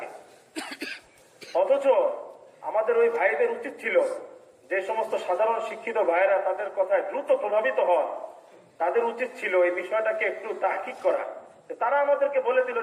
অথচ আমাদের ওই ভাইদের উচিত ছিল, যে সমস্ত সাধারণ শিক্ষিত ভাইয়েরা তাদের কথায় দ্রুত প্রভাবিত হন, তাদের উচিত ছিল এই বিষয়টাকে একটু তাহকিক করা। তারা আমাদেরকে বলে দিল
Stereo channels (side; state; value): both; identical; correlation 1.00